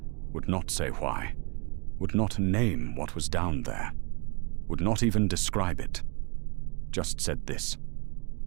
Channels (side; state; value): left; quieter; 33.0 dB